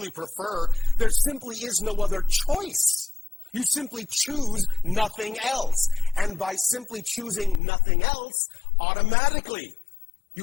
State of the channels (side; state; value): right; drops out; at 7.6 s